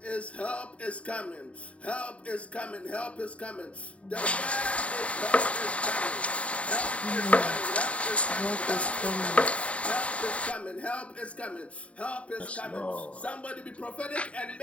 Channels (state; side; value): late; right; 0.064 ms